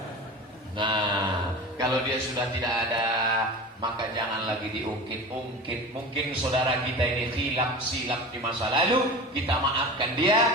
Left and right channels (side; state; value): both; normal; correlation 0.33